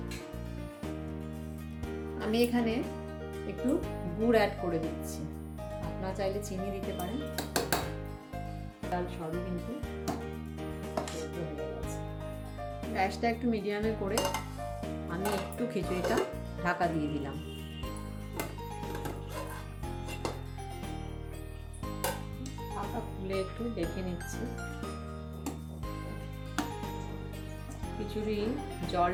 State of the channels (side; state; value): both; identical; correlation 1.00